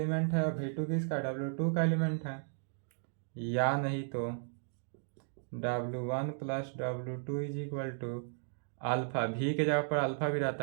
है और V2 किसका? W2 का एलिमेंट है। या नहीं तो W1 plus W2 is equal to alpha, V के जगह पर अल्फा भी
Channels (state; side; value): silent; left; digital silence